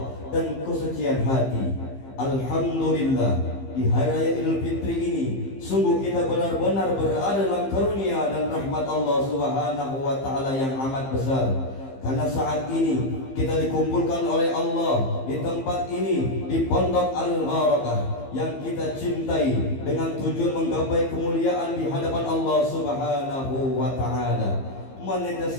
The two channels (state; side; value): late; right; 15 ms